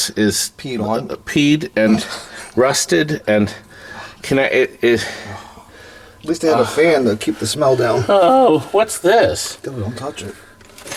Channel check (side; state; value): both; identical; correlation 1.00